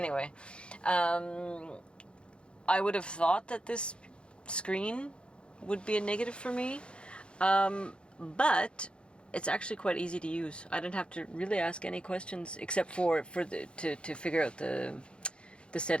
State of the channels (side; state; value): right; late; 0.056 ms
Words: I would have thought that this screen would be a negative for me, but it's actually quite easy to use. I didn't have to really ask any questions except to figure out the